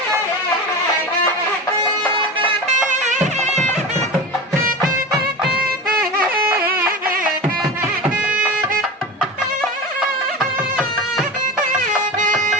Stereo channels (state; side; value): normal; both; correlation 0.28